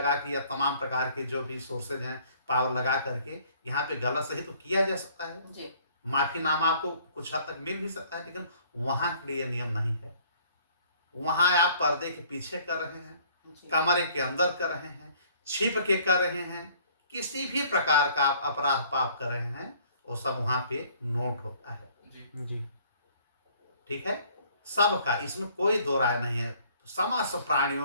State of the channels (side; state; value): both; inverted; correlation -0.57